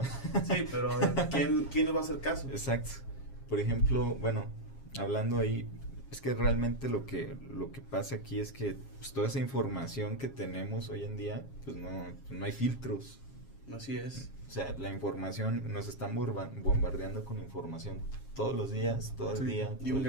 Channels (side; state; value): right; late; 7.4 ms